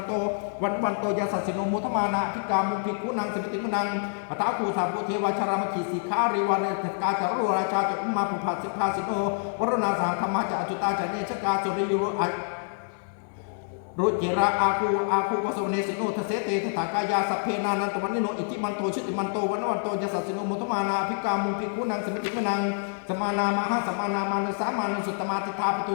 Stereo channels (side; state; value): right; silent; digital silence